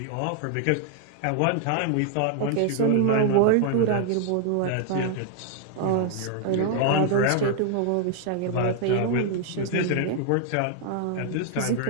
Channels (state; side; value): different; both; correlation 0.00